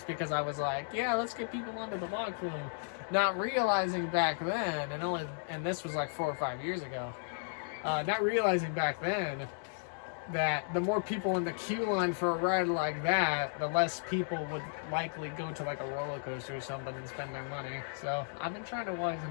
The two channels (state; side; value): silent; right; digital silence